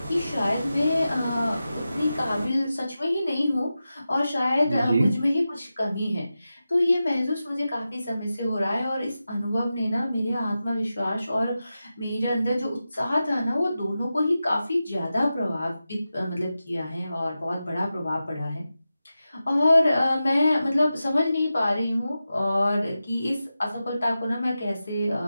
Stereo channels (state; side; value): inverted; both; correlation -0.92